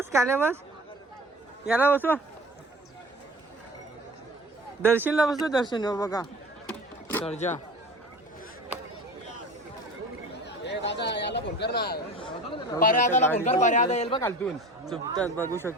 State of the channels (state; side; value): normal; both; correlation 0.39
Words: याला बसवा. दर्शनला बसलो. दर्शन हो बघा सर्जा. याला फोन कर ना. पर्यादाला फोन कर. पर्यादा येईल बघ खालतून. झोपतात बघू